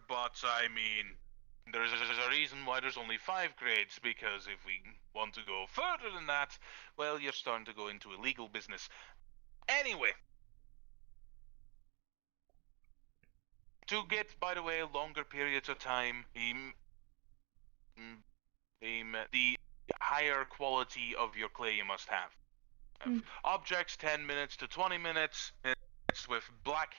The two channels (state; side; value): quieter; left; 31.0 dB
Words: but I mean, there's a reason why there's only 5 grades, because if we want to go further than that, well, you're starting to go into illegal business. Anyway. To get, by the way, longer periods of time, the higher quality of your clay you must have. Objects 10 minutes to 20 minutes, mixed with black